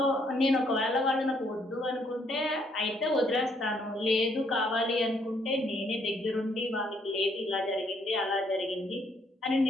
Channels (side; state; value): both; normal; correlation 0.69